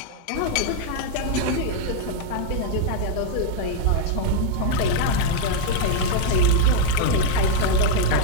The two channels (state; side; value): different; both; correlation 0.00